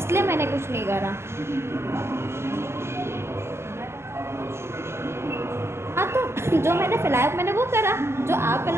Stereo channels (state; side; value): late; left; 0.12 ms